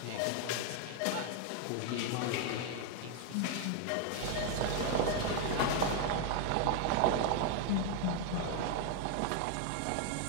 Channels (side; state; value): both; different; correlation 0.01